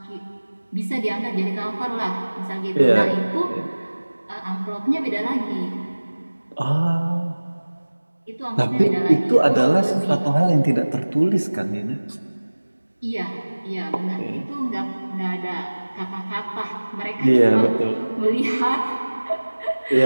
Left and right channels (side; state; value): both; inverted; correlation -1.00